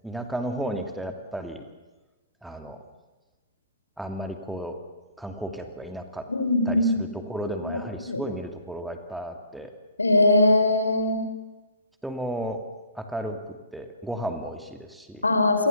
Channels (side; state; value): both; inverted; correlation -0.52